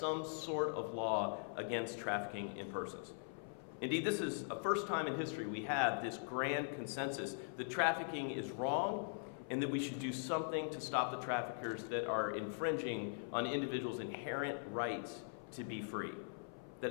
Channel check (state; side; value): silent; right; 50 dB below the other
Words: sort of law against trafficking in persons. Indeed, this is a first time in history we have this grand consensus that trafficking is wrong and that we should do something to stop the traffickers that are infringing on individuals' inherent rights to be free.